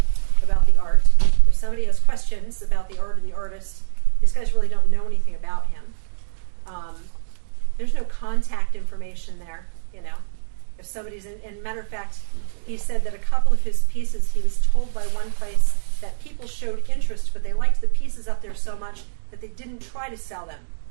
about the art. If somebody has questions about the art or the artist, these guys really don't know anything about him. There's no contact information there, you know. If somebody's in matter of fact, he said that a couple of his pieces, he was told by one place that people showed interest, but they liked the pieces up there so much that they didn't try to sell them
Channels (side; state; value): left; silent; digital silence